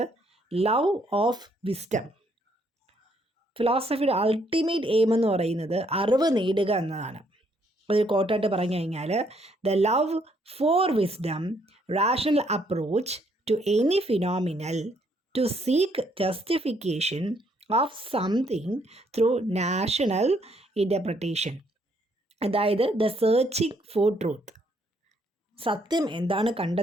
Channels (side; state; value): both; normal; correlation 0.70